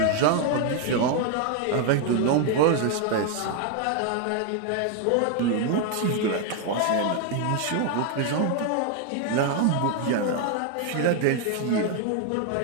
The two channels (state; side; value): different; both; correlation 0.01